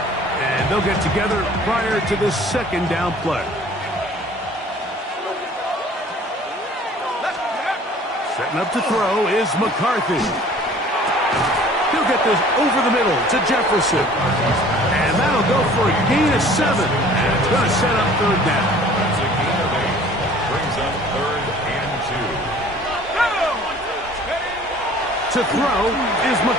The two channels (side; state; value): both; normal; correlation 0.50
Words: and they'll get together prior to this 2nd down play. Setting up to throw is McCarthy. He'll get this over the middle to Jefferson. And that'll go for a gain of 7. And it's going to set up 3rd down. That's a gain of 8. Brings up 3rd and 2. To throw is